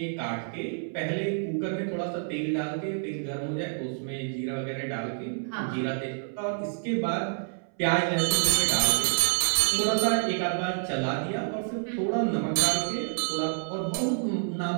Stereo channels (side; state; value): left; silent; 59 dB below the other